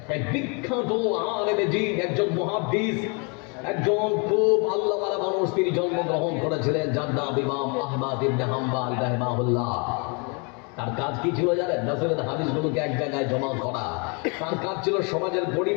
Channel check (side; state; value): right; quieter; 33.7 dB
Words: এক বিখ্যাত আলেম দ্বীন, একজন মুহাদ্দিস, একজন খুব আল্লাহওয়ালা মানুষ, তিনি জন্মগ্রহণ করেছিলেন, যার নাম ইমাম আহমদ ইবনে হাম্বল রাহিমাহুল্লাহ। তার কাজ কি ছিল জানেন? রাসূলের হাদিসগুলোকে এক জায়গায় জমা করা। তার কাজ ছিল সমাজের